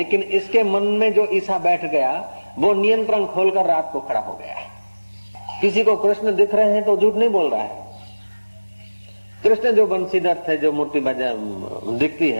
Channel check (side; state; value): both; inverted; correlation -1.00